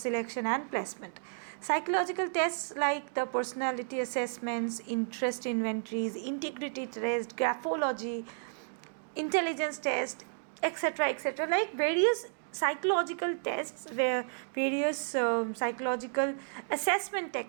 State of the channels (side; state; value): left; silent; digital silence